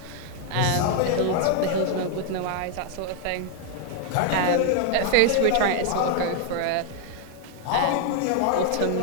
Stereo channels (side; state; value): both; different; correlation 0.00